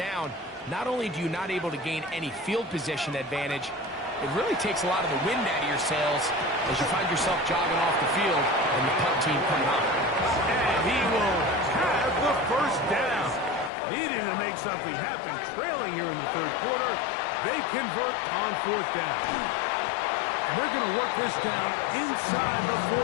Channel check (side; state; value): right; drops out; at 13.7 s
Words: Not only do you not able to gain any field position advantage, it really takes a lot of the wind out of your sails as you find yourself jogging off the field and the punt team coming up. And he will have the first down. Needing to make something happen, trailing here in the 3rd quarter. They convert on 4th down. And they're going to work this down inside the